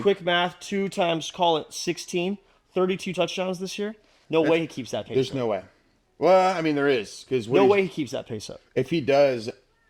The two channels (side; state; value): both; identical; correlation 1.00